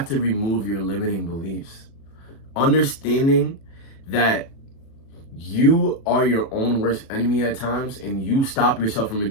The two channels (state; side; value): late; right; 36 ms